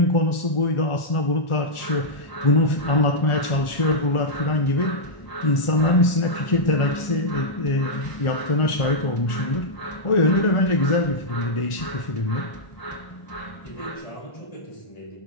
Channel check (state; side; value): late; right; 1.4 ms